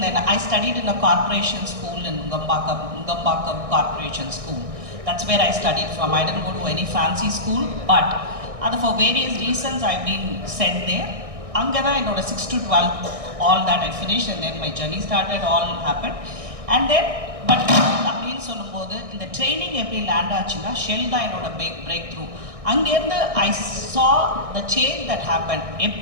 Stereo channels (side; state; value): left; late; 1.6 ms